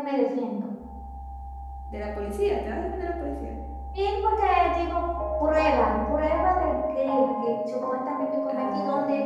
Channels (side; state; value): both; identical; correlation 1.00